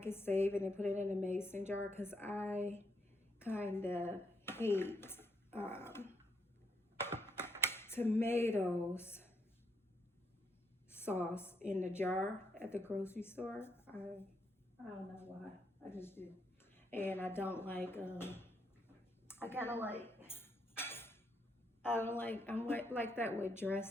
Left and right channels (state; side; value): normal; both; correlation 0.76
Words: save it and put it in a mason jar because I kind of hate tomatoes sauce in the jar at the grocery store. I don't know why, I just do. And I don't like, I'm like that with